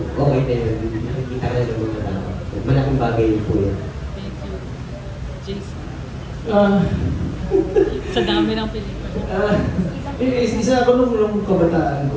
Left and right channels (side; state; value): both; identical; correlation 1.00